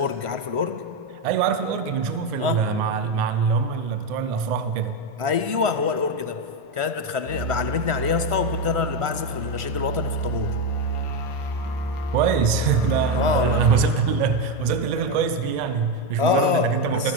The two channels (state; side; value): late; left; 1.5 ms